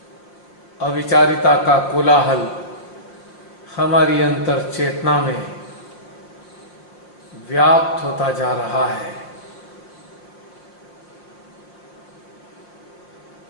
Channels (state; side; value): late; right; 5.6 ms